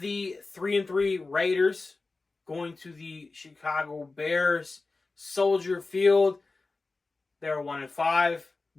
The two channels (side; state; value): right; quieter; 3.6 dB